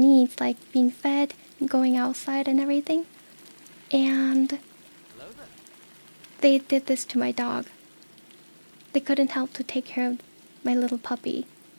like being fed, going outside and everything. And they did this to my dog. They couldn't help to take care of my little puppy.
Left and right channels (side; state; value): both; inverted; correlation -1.00